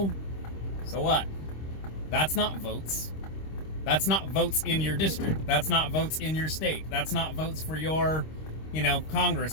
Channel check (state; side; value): late; right; 26 ms